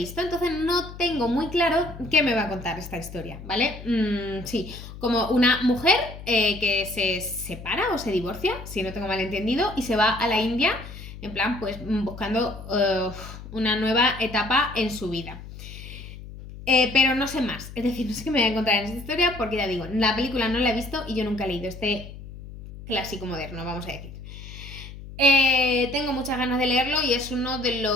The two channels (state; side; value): noise; left; hum, 13 dB below the sound